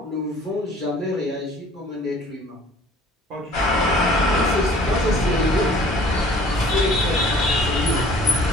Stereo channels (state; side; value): normal; both; correlation 0.52